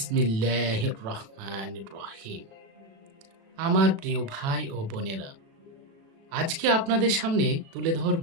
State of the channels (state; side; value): late; left; 36 ms